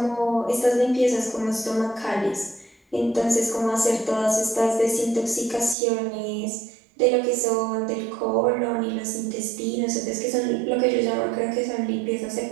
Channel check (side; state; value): left; drops out; at 5.8 s